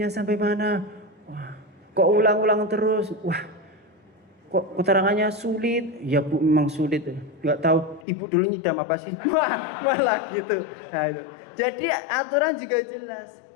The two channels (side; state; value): right; drops out; at 8.1 s